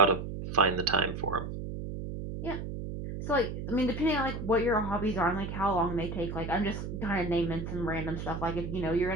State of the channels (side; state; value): right; noise; hum, 6 dB below the sound